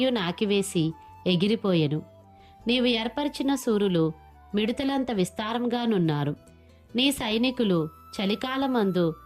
నాకివేసి ఎగిరిపోయెను. నీవు ఏర్పరిచిన సూరులు మిడతలంత విస్తారంగానున్నారు. నీ సైనికులు చలికాలమందు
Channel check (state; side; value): identical; both; correlation 1.00